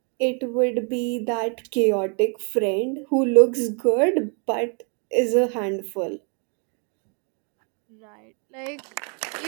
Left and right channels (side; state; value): left; quieter; 39.3 dB